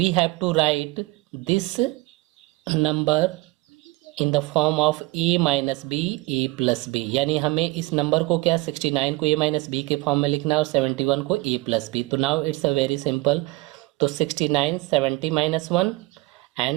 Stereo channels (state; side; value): quieter; left; 21.8 dB